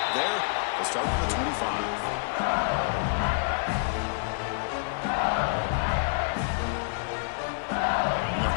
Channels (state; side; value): silent; right; digital silence